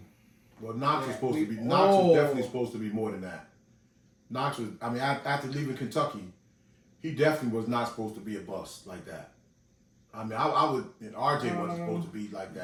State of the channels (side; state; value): both; identical; correlation 1.00